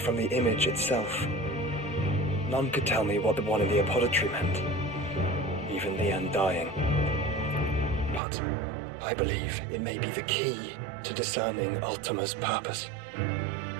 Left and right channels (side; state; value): left; drops out; at 8.2 s